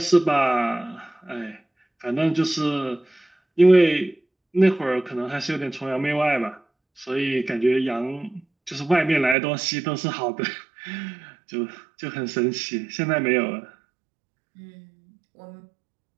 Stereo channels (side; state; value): left; drops out; at 9.3 s